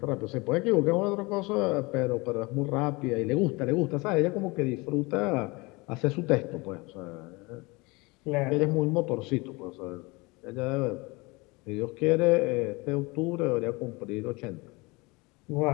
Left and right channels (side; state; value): right; quieter; 25.2 dB